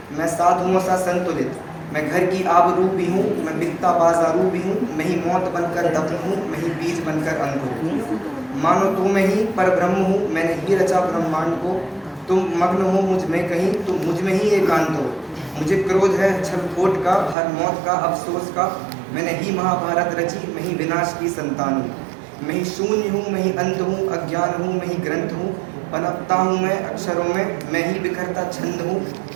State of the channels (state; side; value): drops out; left; at 17.4 s